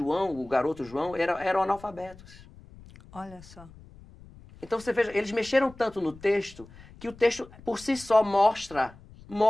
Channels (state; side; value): noise; left; rumble, 21 dB below the sound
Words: o garoto João, eram analfabetos. Olha só. Então você veja, eles mexeram tanto no texto, que o texto por si só mostra